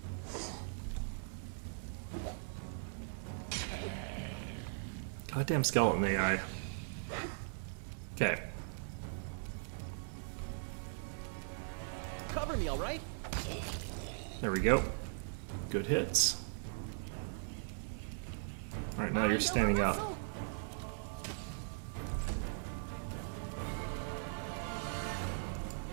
Goddamn skeleton AI. Okay. Cover me, all right? There we go. Good hits. Alright, now you're standing up.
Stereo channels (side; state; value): left; silent; digital silence